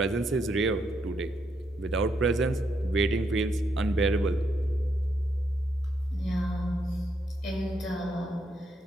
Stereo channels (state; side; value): normal; both; correlation 0.77